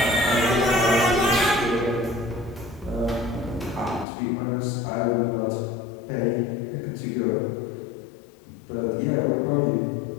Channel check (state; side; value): drops out; right; at 4.0 s